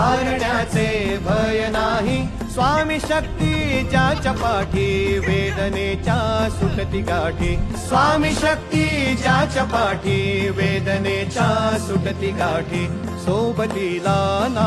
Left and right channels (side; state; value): both; identical; correlation 1.00